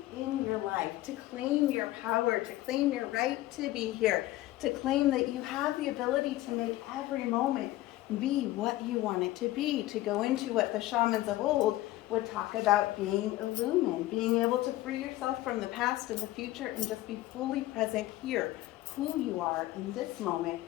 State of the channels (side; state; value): right; quieter; 16.4 dB